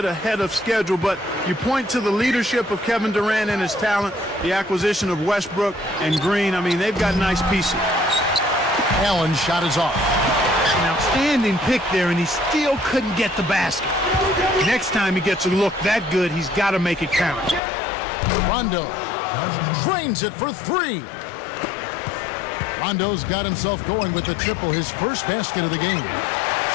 ahead of schedule, but you point to the leadership of Kevin Durant and his talent, the acquisition of Westbrook and Green. I mean, they've got nice pieces. Allen's shot is off. An outstanding pick there, and he still couldn't get the basket. Next time he gets a look that good, he's got to make it count. Rondo drains it for 3. Rondo's got himself going with the triple, his first basket of the game.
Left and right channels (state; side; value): drops out; right; at 17.6 s